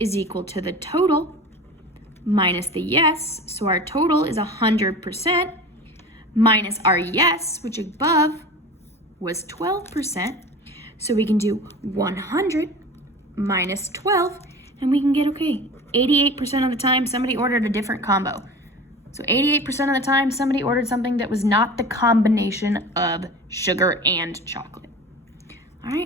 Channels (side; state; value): both; normal; correlation 0.35